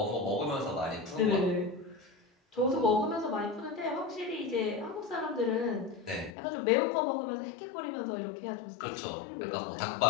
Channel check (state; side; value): drops out; right; at 6.3 s